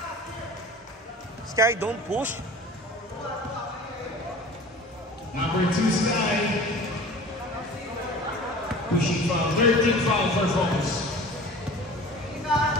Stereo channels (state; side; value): normal; both; correlation 0.41